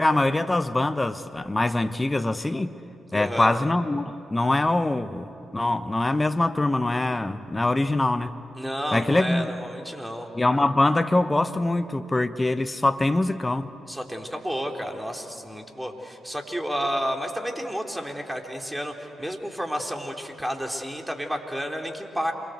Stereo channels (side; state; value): both; normal; correlation 0.97